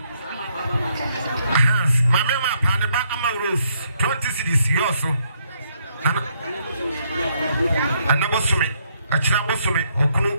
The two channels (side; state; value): both; inverted; correlation -0.73